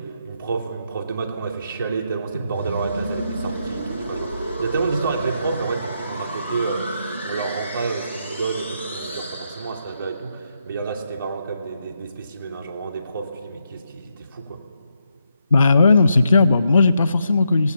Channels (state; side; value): inverted; both; correlation -0.80